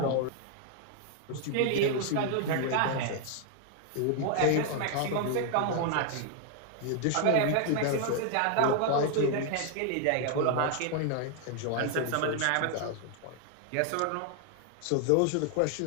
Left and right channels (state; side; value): different; both; correlation 0.00